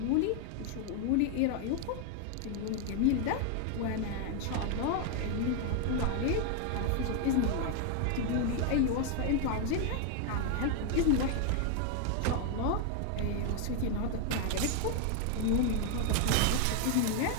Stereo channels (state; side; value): different; both; correlation 0.00